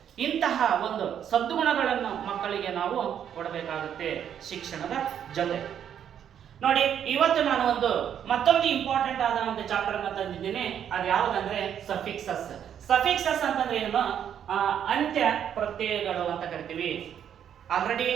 ಇಂತಹ ಒಂದು ಸದ್ಗುಣಗಳನ್ನು ಮಕ್ಕಳಿಗೆ ನಾವು ಕೊಡಬೇಕಾಗುತ್ತೆ ಶಿಕ್ಷಣದ ಜೊತೆ. ನೋಡಿ, ಇವತ್ತು ನಾನು ಮತ್ತೊಂದು ಇಂಪಾರ್ಟೆಂಟ್ ಆದ ಒಂದು ಚಾಪ್ಟರ್ ಅನ್ನು ತಂದಿದ್ದೀನಿ. ಅದು ಯಾವುದಂದ್ರೆ ಸಫಿಕ್ಸಸ್ ಅಂತಂದ್ರೆ ಏನು, ಅಂತ್ಯ ಪ್ರತ್ಯಯಗಳು ಅಂತ ಕರಿತೀವಿ. Already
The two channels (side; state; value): left; quieter; 9.1 dB